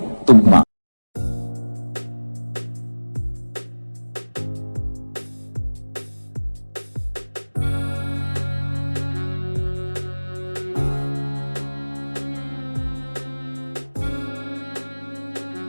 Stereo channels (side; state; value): both; inverted; correlation -1.00